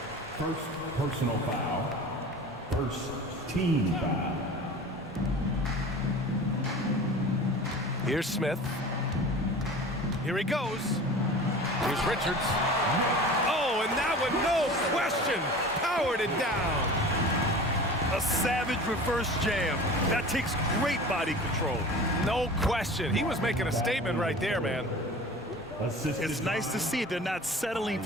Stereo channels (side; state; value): both; normal; correlation 0.38